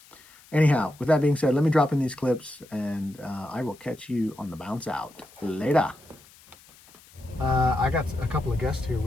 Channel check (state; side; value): noise; left; hiss, 25 dB below the sound